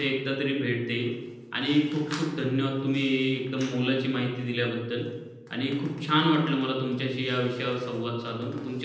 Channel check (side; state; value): both; identical; correlation 1.00